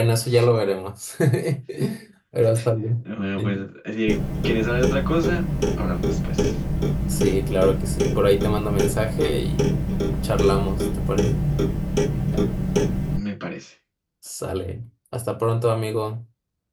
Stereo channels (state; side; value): identical; both; correlation 1.00